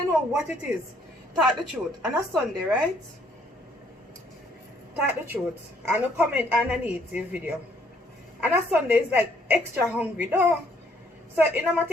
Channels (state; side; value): normal; both; correlation 0.66